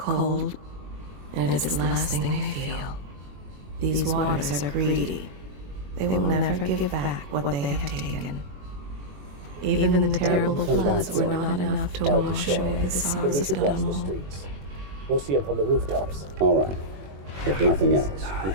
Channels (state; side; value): late; left; 21 ms